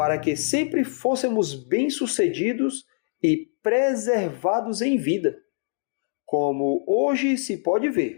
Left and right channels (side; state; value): right; silent; digital silence